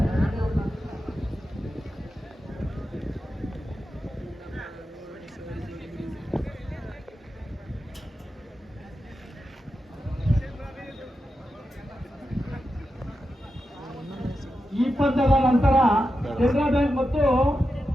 ಈ ಪಂದ್ಯದ ನಂತರ ಕೆನರಾ ಬ್ಯಾಂಕ್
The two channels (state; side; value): normal; both; correlation 0.89